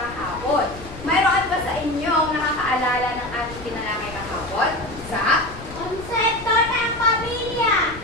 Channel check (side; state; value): left; noise; rumble, 15 dB below the sound